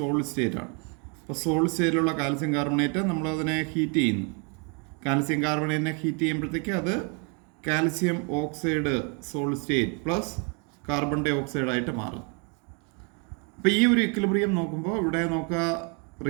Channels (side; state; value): left; quieter; 34.0 dB